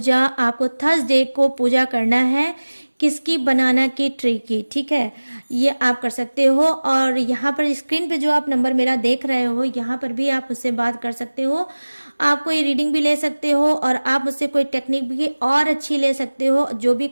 आपको थर्सडे को पूजा करना है। किसकी, बनाना की ट्री की, ठीक है, ये आप कर सकते हो। और यहाँ पर स्क्रीन पे जो आप नंबर मेरा देख रहे हो, यहाँ पर भी आप मुझसे बात कर सकते हो। आप कोई रीडिंग भी ले सकते हो और आप मुझसे कोई टेक्निक भी और अच्छी ले सकते हो, जो भी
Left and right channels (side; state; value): both; inverted; correlation -1.00